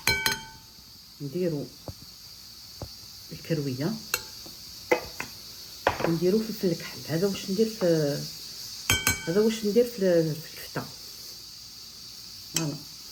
نديرو الكرويه ونديرو فلفل الكحل. هذا واش ندير في الكفته. فوالا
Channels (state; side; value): identical; both; correlation 1.00